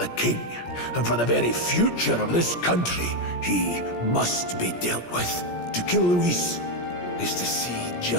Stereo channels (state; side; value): late; right; 17 ms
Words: king, and for the very future of this country. He must be dealt with. To kill Luis is to see